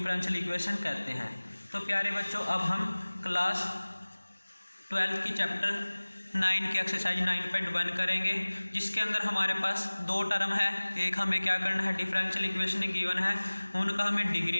इक्वेशन कहते हैं। तो प्यारे बच्चों अब हम क्लास 12 की चैप्टर 9 की एक्सरसाइज 9.1 करेंगे, जिसके अंदर हमारे पास 2 टर्म है। एक हमें क्या करना है, डिफरेंशियल इक्वेशन गिवन है, उनका हमें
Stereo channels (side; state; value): both; inverted; correlation -1.00